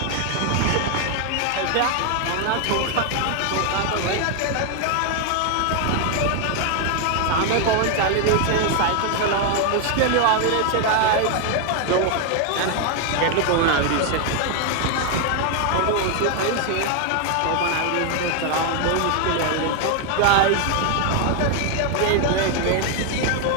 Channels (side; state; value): both; different; correlation 0.01